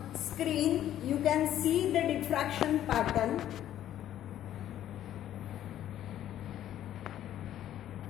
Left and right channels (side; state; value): right; quieter; 11.8 dB